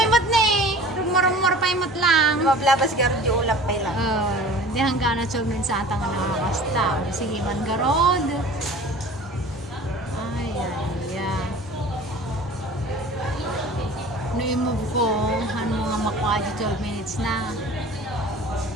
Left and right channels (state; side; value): normal; both; correlation 0.43